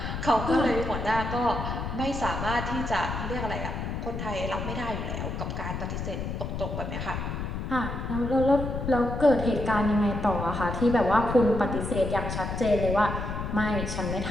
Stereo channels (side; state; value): left; noise; rumble, 4 dB below the sound